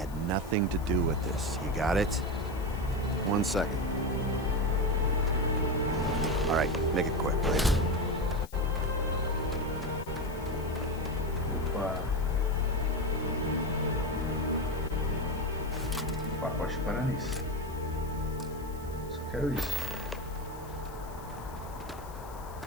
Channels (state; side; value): noise; left; hiss, 21 dB below the sound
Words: nothing to do with this. You got it? 1 second. Alright, make it quick, please. Opa. Pacote para nisso. Só quero isso.